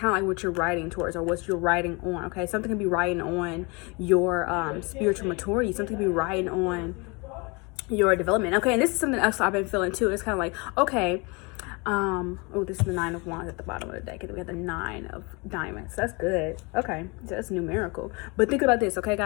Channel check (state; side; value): quieter; right; 29.0 dB